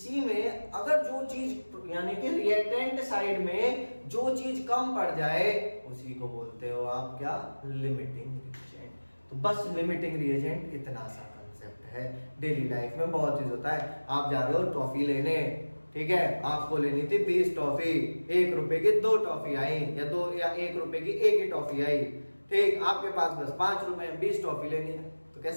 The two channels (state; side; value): inverted; both; correlation -1.00